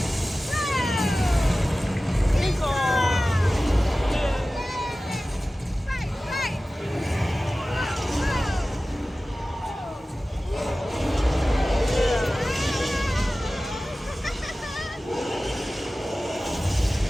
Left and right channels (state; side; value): normal; both; correlation 0.96